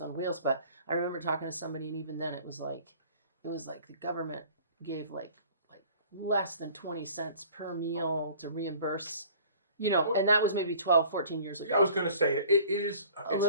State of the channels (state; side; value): inverted; both; correlation -0.49